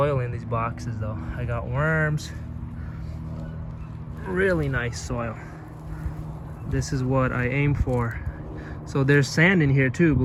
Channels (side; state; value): both; identical; correlation 1.00